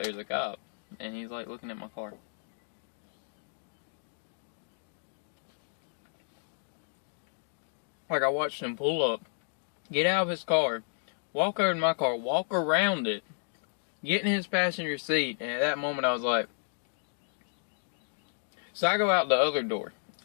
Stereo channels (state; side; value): silent; right; digital silence